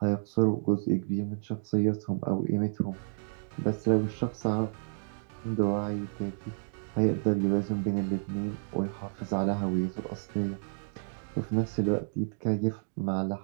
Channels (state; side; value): silent; left; digital silence